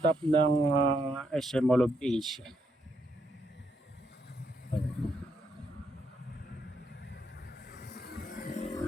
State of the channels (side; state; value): both; normal; correlation 0.77